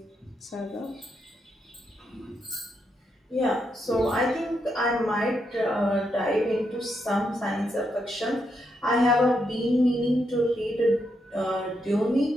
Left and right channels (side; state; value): both; normal; correlation 0.81